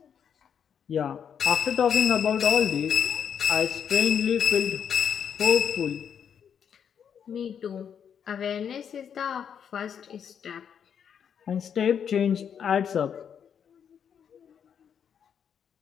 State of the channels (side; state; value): right; quieter; 7.9 dB